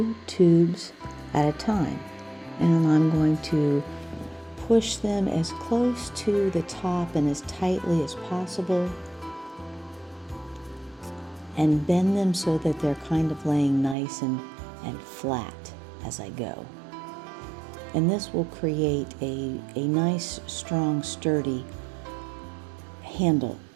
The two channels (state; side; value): drops out; left; at 14.0 s